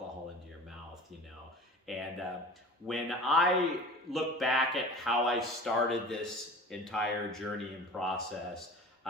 into your mouth, And when I look back at how I started this entire journey and process,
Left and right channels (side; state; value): both; normal; correlation 0.39